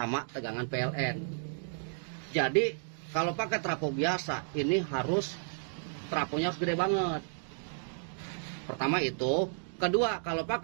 tegangan PLN. Jadi kalau pakai trafo biasa ini trafonya harus gede banget. Pertama itu, kedua kalau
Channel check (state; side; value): silent; left; digital silence